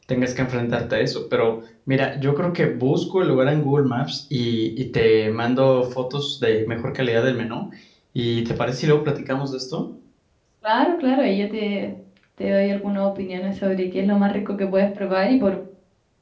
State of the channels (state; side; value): identical; both; correlation 1.00